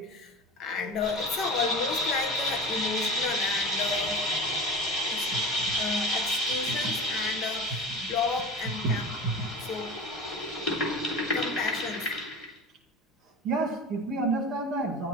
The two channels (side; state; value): both; normal; correlation 0.32